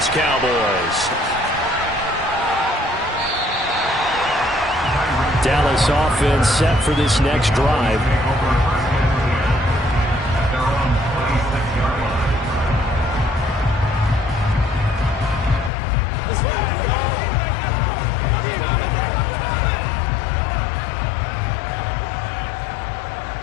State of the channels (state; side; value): drops out; right; at 15.7 s